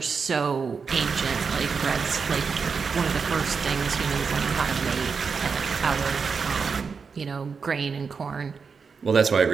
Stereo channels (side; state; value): left; quieter; 5.5 dB